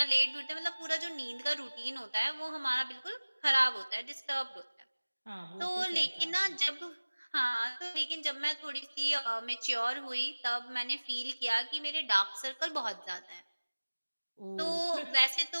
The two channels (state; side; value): inverted; both; correlation -1.00